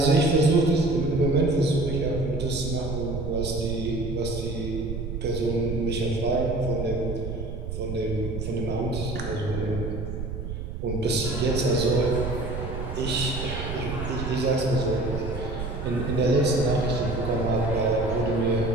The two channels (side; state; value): right; noise; rumble, 6 dB below the sound